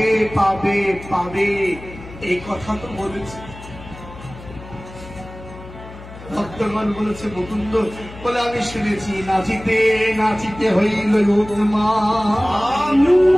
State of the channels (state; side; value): noise; left; hum, 16 dB below the sound